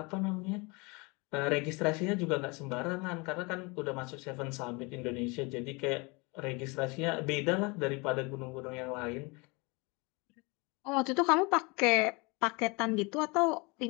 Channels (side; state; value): right; quieter; 27.9 dB